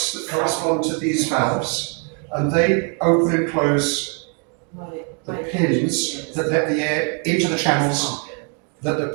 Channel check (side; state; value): left; quieter; 38.9 dB